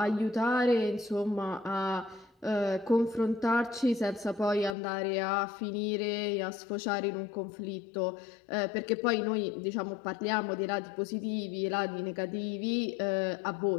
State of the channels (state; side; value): drops out; right; at 4.8 s